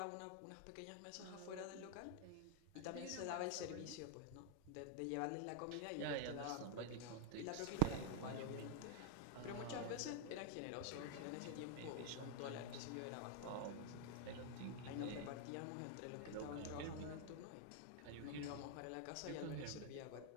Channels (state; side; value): different; both; correlation 0.00